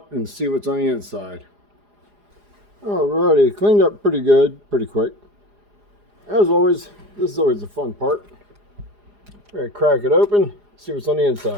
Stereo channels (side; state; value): left; late; 4.9 ms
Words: and see what's on the inside. Alrighty, cleaned up pretty good, pretty quick. As always, this is always the fun part. We're going to crack it open, see what's on the